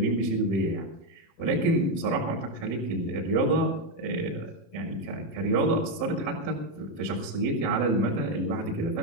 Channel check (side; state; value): right; late; 18 ms